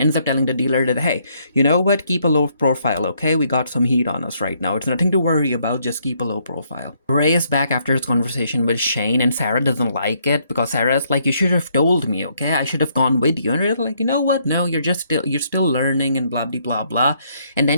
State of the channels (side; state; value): both; inverted; correlation -0.70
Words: ends up telling the dealer that, hey, you know what? Keep a low profile, okay? We got some heat on us right now. It's nothing to worry about. Just keep a low profile. Ray is back after his conversation with Shane, and Sarah doesn't like it because Sarah's like, you should have told me, okay? I should have gone with you. And Ray's like, you know what? No, you're still learning and blah, blah, blah, blah. And